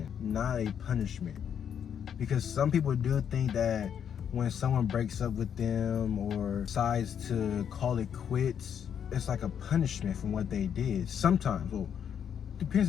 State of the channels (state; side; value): quieter; right; 8.4 dB